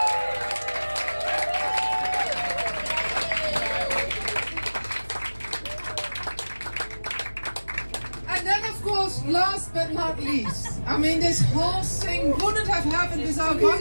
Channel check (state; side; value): inverted; both; correlation -1.00